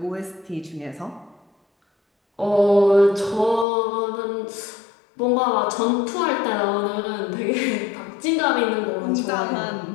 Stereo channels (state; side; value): drops out; right; at 3.7 s